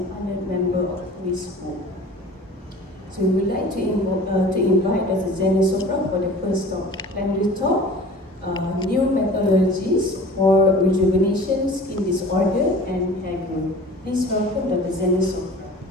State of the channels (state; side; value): normal; both; correlation 0.43